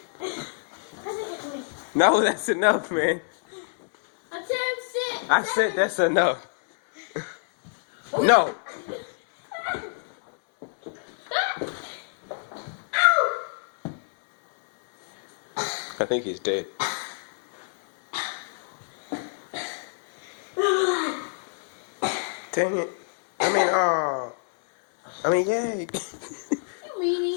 No, that's enough, man. Attempt 6. I said that's enough. No. I think he's dead. Dang it. Yay. You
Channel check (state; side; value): silent; right; digital silence